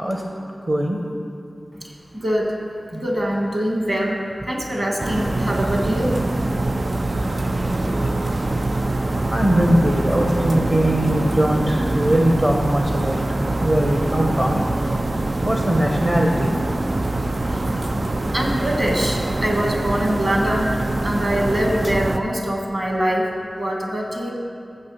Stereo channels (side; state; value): both; normal; correlation 0.96